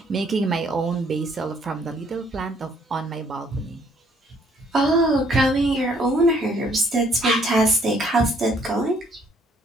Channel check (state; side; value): normal; both; correlation 0.64